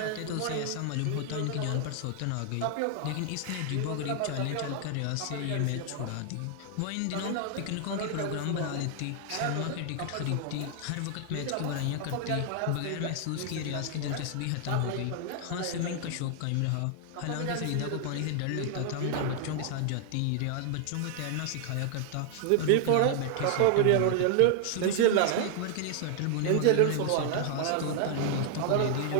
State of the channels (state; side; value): different; both; correlation 0.00